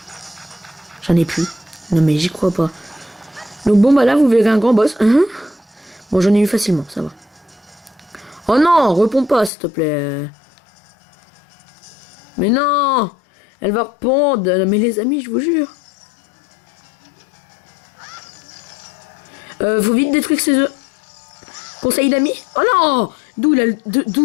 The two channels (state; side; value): drops out; right; at 9.5 s